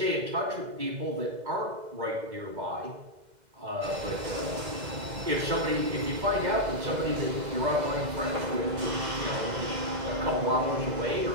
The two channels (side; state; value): left; late; 2.0 ms